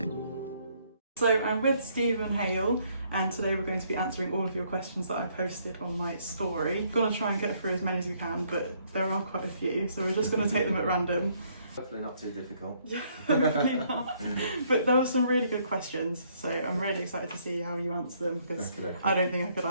So I'm with Stephen Hale, and today we're going to be answering all of your questions that I posted on my story. I'm going to try and get through as many as you can, but there are quite a few, so we're just going to take them at random. Hopefully not too difficult. Hopefully not. But there were some really good questions, so I'm really excited to see how you answer them, because I don't think I could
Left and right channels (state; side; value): inverted; both; correlation -0.68